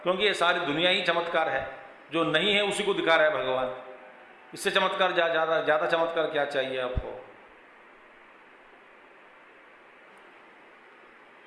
ये सारी दुनिया ही चमत्कार है, जो नहीं है उसी को दिखा रहा है भगवान। इससे चमत्कार ज़्यादा चमत्कार क्या चाहिए आपको।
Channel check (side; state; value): both; identical; correlation 1.00